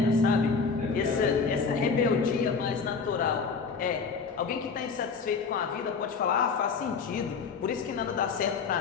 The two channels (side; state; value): right; quieter; 5.2 dB